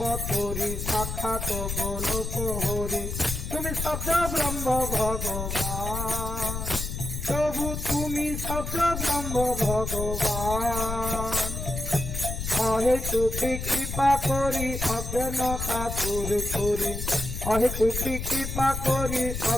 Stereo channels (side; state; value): left; noise; rumble, 5 dB below the sound